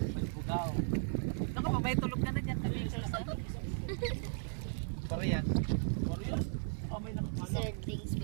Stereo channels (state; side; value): silent; left; 54 dB below the other